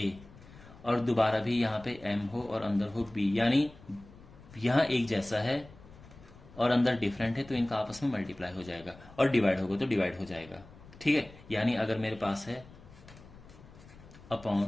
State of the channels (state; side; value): noise; left; rumble, 21 dB below the sound